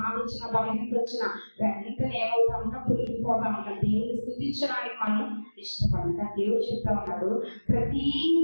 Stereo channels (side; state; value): both; inverted; correlation -1.00